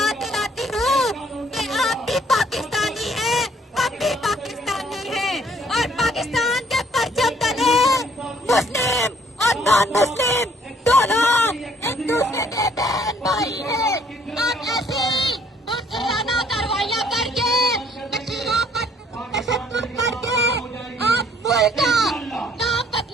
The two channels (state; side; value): normal; both; correlation 0.62